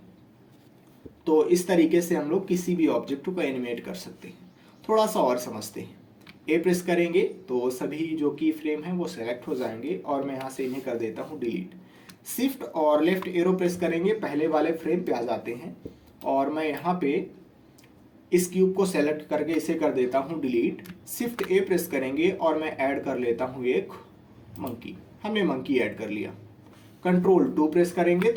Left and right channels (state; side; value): identical; both; correlation 1.00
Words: तो इस तरीके से हम लोग किसी भी ऑब्जेक्ट को एनिमेट कर सकते हैं। थोड़ा सा और समझते हैं। ए प्रेस करेंगे तो सभी जो की फ्रेम है वो सेलेक्ट हो जाएंगे और मैं यहाँ से इन्हें कर देता हूँ डिलीट। शिफ्ट और लेफ्ट एरो प्रेस करेंगे, पहले वाले फ्रेम पे आ जाते हैं और मैं यहाँ पे इस क्यूब को सेलेक्ट करके इसे कर देता हूँ डिलीट। शिफ्ट ए प्रेस करेंगे और मैं ऐड कर लेता हूँ एक मंकी। हमने मंकी ऐड कर लिया। कंट्रोल 2 प्रेस करेंगे